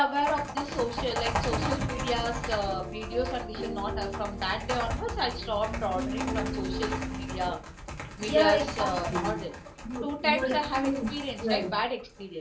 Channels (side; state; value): both; identical; correlation 1.00